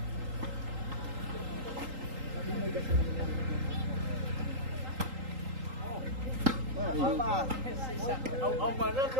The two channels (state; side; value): late; left; 3.8 ms